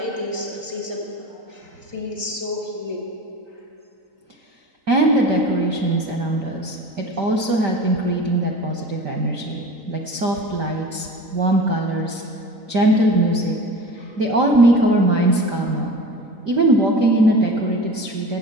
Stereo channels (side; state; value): left; late; 3.9 ms